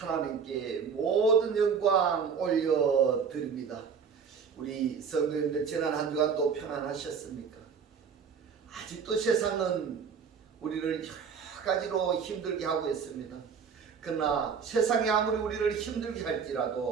모든 영광 올려드립니다. 우리 성도님들 지난 한 주간도 평안하셨습니까? 아직도 세상은 우리를 여러 가지로 힘들게 하고 있습니다. 그러나 세상이 아무리 우리를 힘들게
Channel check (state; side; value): quieter; left; 6.3 dB